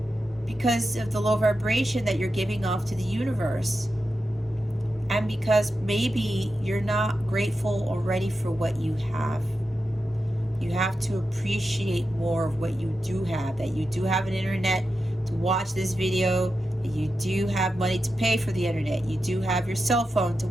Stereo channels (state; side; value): normal; both; correlation 0.90